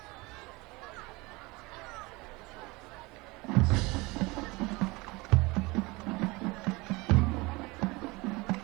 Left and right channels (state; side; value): quieter; left; 23.8 dB